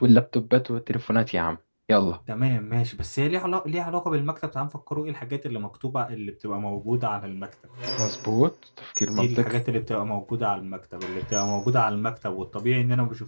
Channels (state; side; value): inverted; both; correlation -1.00